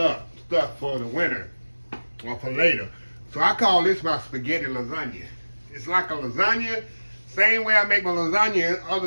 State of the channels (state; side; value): inverted; both; correlation -1.00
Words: stuff for the winter or for later. So I call this my spaghetti lasagna. It's like a lasagna, same way I make my lasagna.